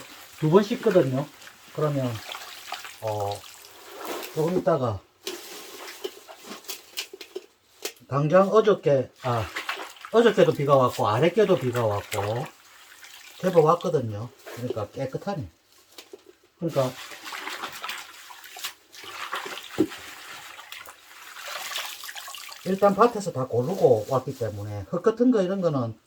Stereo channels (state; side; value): identical; both; correlation 1.00